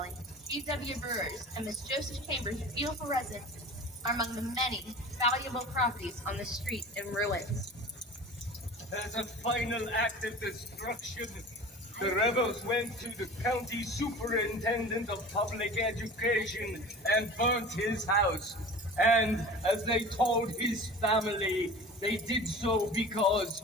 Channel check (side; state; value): both; normal; correlation 0.38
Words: G.W. Brewer's, and Miss Joseph Chambers' beautiful residence are among the many valuable properties on the street in ruins. As a final act of destruction, the rebels went to the county superintendent of public education and burnt his house. And as they told his family, they did so because